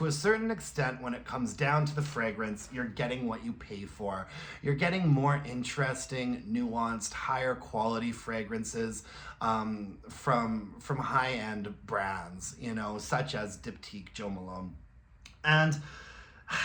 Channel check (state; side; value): identical; both; correlation 1.00